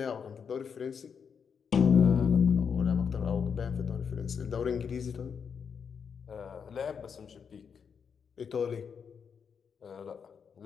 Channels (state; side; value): quieter; right; 6.6 dB